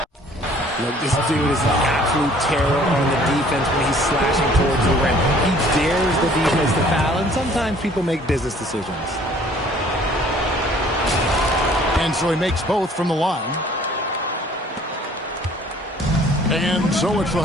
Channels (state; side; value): normal; both; correlation 0.55